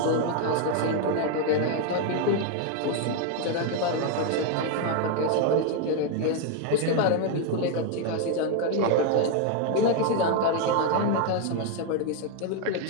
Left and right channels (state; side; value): different; both; correlation 0.01